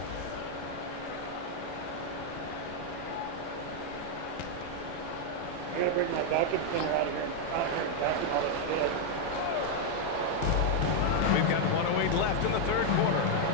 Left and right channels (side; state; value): both; different; correlation 0.00